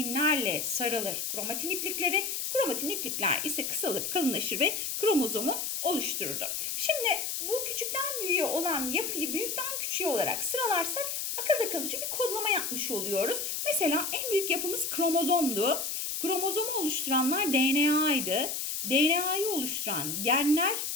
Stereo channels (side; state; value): left; noise; hiss, 2 dB below the sound